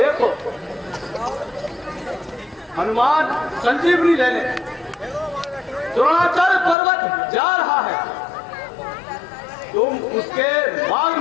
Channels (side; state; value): right; drops out; at 6.8 s